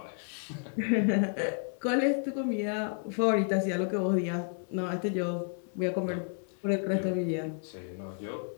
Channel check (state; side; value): silent; right; 55 dB below the other